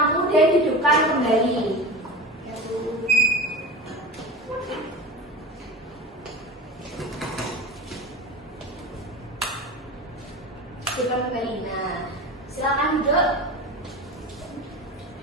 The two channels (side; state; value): both; normal; correlation 0.31